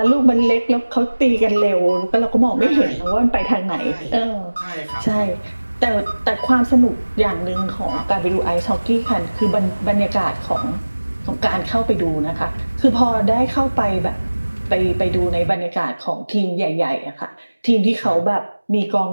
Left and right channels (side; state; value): both; inverted; correlation -1.00